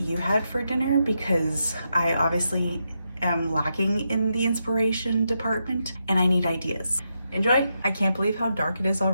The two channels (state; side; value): inverted; both; correlation -0.84